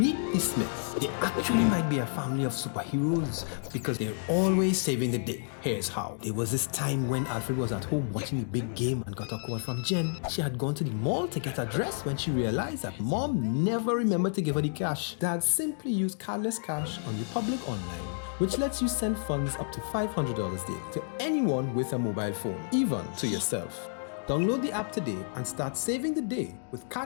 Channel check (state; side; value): silent; right; digital silence